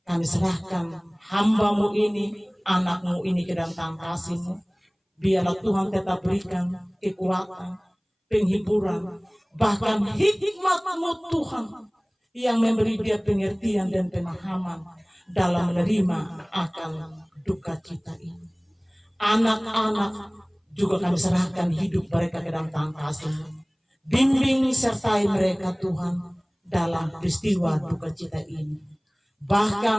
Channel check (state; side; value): identical; both; correlation 1.00